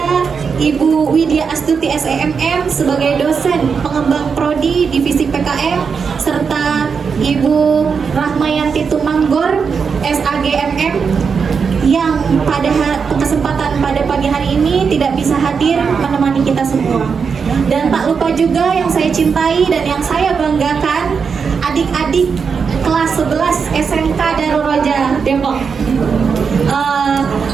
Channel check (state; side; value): quieter; left; 5.9 dB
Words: Ibu Widya Astuti SEMM sebagai dosen pengembang prodi divisi PKM, serta Ibu Rahmayanti Tumanggor SAGMM yang pada kesempatan pada pagi hari ini tidak bisa hadir menemani kita semua. Dan tak lupa juga yang saya cintai dan yang saya banggakan, adik-adik kelas 11 SMK Darul Roja Depok.